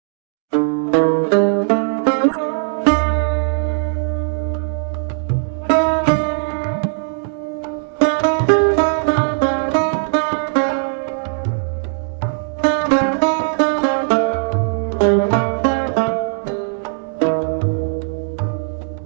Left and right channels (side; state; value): left; silent; digital silence